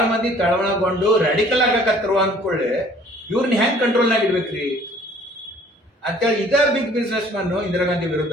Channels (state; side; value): normal; both; correlation 0.54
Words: ಮಂದಿ ತಳವಳಗೊಂಡು ರಾಡಿಕಲ್ ಆಗಕತ್ತರು ಅಂದ್ಕೊಳ್ಳೆ, ಇವ್ರನ್ನ ಹೆಂಗ್ ಕಂಟ್ರೋಲ್ ನಾಗ ಇಡ್ಬೇಕ್ರಿ ಅಂತೇಳಿ ಇದ big businessman Indira Gandhi